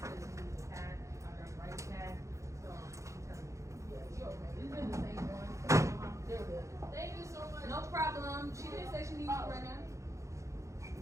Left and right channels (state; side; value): late; left; 0.15 ms